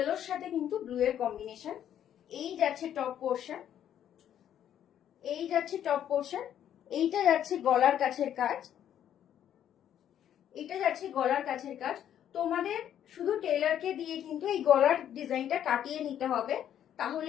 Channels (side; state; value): right; quieter; 10.3 dB